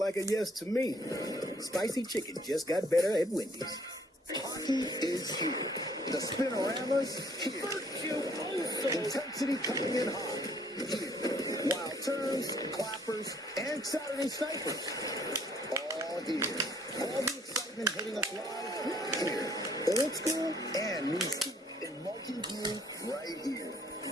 a yes to me. Spicy chicken just got better at Wendy's. Hockey is here. The Spinorama's here. Intensity coming in hot. Here. Wild turns, clappers, and Saturday snipers. All here. All the excitement hitting us live here. Old school and new school in multi-view right here.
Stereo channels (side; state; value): both; normal; correlation 0.62